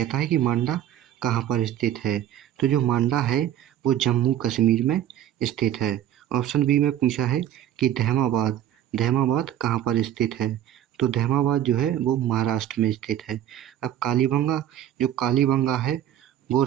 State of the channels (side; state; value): left; quieter; 11.4 dB